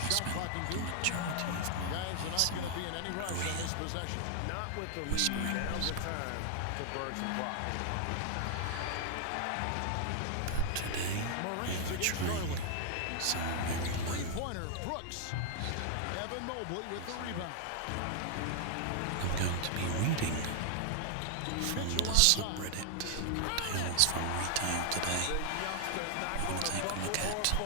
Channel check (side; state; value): both; different; correlation 0.00